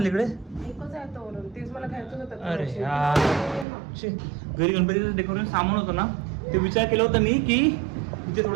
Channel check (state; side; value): drops out; left; at 3.7 s